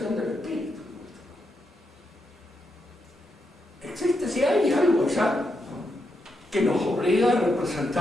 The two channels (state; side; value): normal; both; correlation 0.83